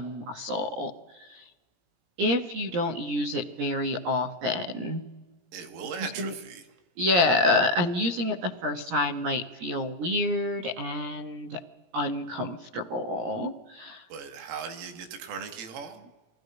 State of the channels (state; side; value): late; left; 17 ms